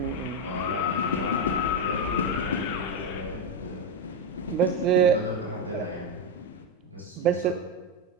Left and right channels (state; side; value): normal; both; correlation 0.07